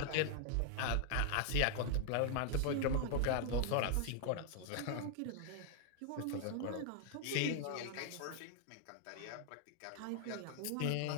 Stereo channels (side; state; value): both; different; correlation 0.00